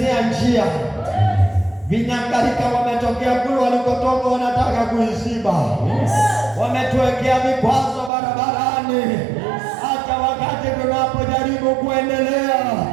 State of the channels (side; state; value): left; drops out; at 8.1 s